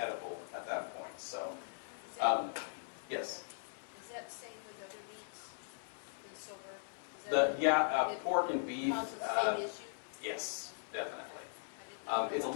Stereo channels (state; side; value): silent; right; 51 dB below the other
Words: at that point. So, yes? Is that the same with other meats, the silver? Pork and beef. Same issue? Yes, definitely. I didn't know It's a